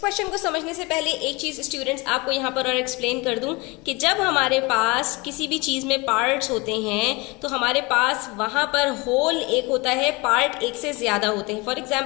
को समझने से पहले एक चीज स्टूडेंट्स आपको यहाँ पर और एक्सप्लेन कर दूं कि जब हमारे पास किसी भी चीज में पार्ट्स होते हैं तो हमारे पास वहां पर होल एक होता है, पार्ट एक से ज्यादा होते हैं। फॉर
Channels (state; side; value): quieter; right; 25.8 dB